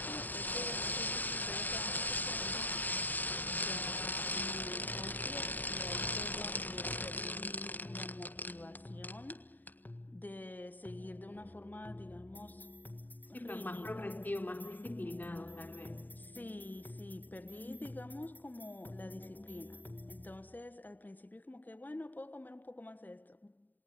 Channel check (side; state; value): right; late; 0.087 ms